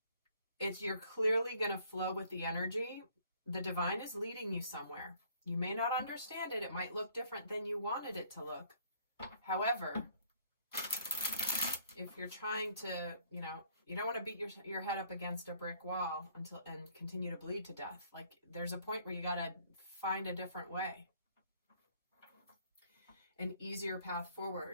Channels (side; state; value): both; inverted; correlation -0.61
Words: You're clearly going to flow with the energy. The divine is leading you somewhere. You may not understand it. It might look different than you wanted it to look. However, if you're trying to, you don't want to beat your head up against a brick wall and continue to bleed to death. Like, there's a point where you got to find a different way, an easier path